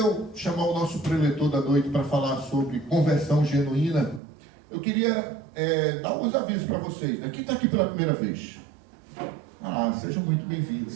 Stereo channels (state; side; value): drops out; left; at 4.2 s